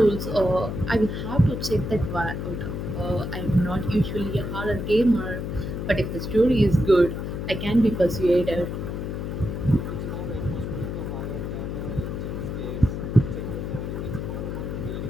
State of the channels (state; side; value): noise; left; hum, 4 dB below the sound